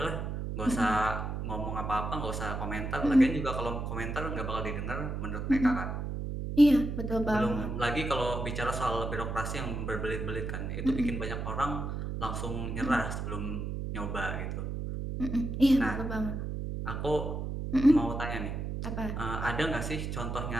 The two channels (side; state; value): right; noise; hum, 4 dB below the sound